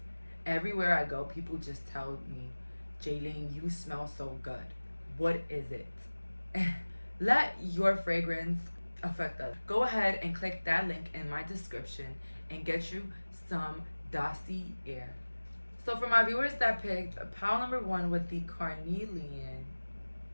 everywhere I go people just tell me, Jaylene, you smell so good. What is it? Let your fragrance affect us. Go ahead and click that link in my description and get you some Dossier. So for my viewers that picked pile number 1 with the carnelian,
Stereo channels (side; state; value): both; inverted; correlation -1.00